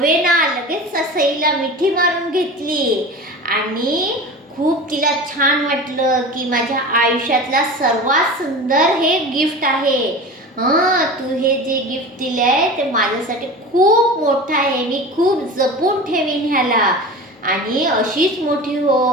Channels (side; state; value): both; normal; correlation 0.33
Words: लगेच सईला मिठी मारून घेतली आणि खूप तिला छान वाटलं की माझ्या आयुष्यातला सर्वात सुंदर हे गिफ्ट आहे. तू हे जे गिफ्ट दिलंय ते माझ्यासाठी खूप मोठं आहे, मी खूप जपून ठेवीन ह्याला. आणि अशीच मोठी